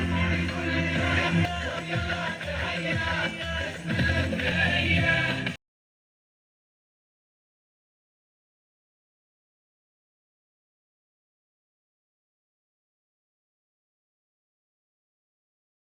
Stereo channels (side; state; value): both; identical; correlation 1.00